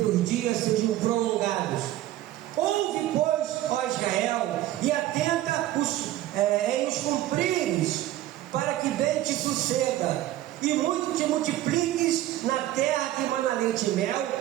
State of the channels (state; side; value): quieter; left; 14.2 dB